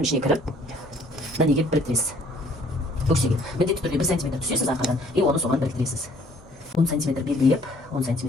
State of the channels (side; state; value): both; normal; correlation 0.60